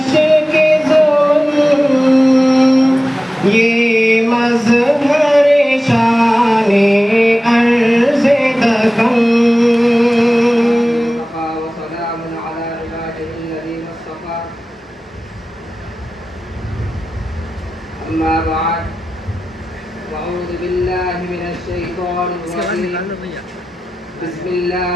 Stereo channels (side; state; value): both; normal; correlation 0.95